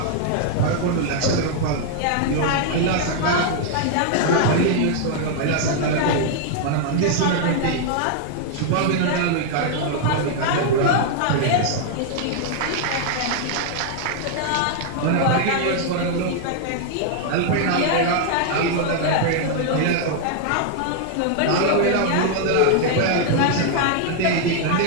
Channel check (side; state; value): both; different; correlation 0.00